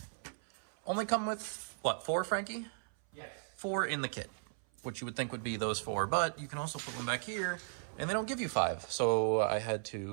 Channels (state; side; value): silent; left; 53 dB below the other